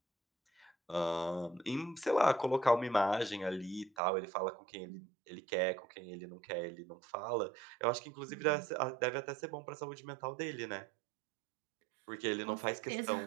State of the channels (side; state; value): left; drops out; at 3.9 s